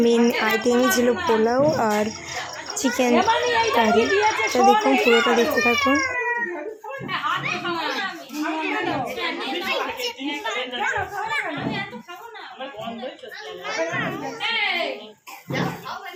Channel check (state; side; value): identical; both; correlation 1.00